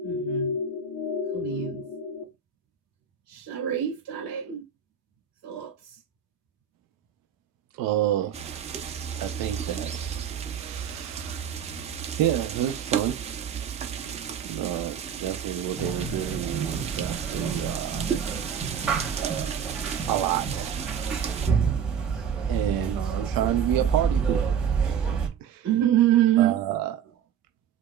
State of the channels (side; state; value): left; quieter; 7.9 dB